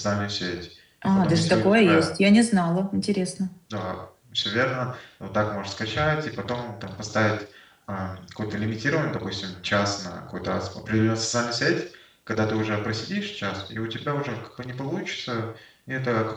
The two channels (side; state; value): both; identical; correlation 1.00